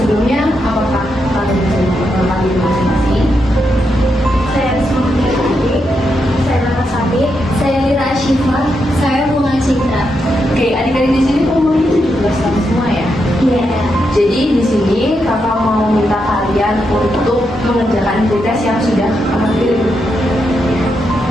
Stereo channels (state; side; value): normal; both; correlation 0.83